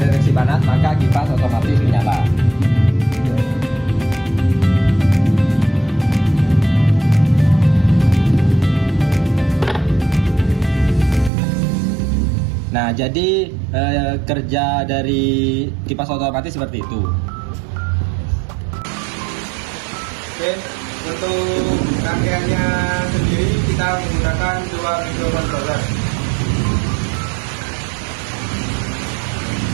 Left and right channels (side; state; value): left; drops out; at 11.3 s